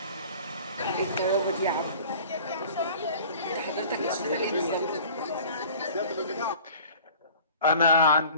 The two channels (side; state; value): both; inverted; correlation -0.45